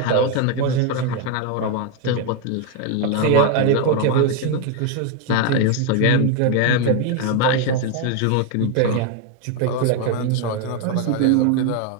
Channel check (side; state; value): both; different; correlation 0.01